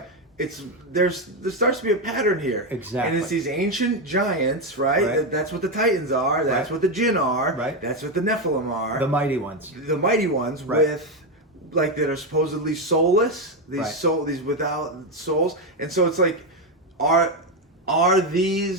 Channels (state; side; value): normal; both; correlation 0.08